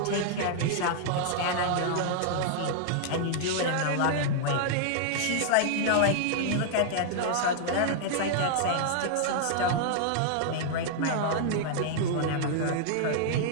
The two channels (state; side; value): different; both; correlation -0.01